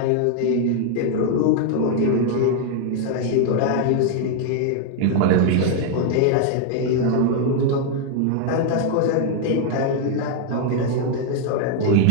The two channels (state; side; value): different; both; correlation 0.00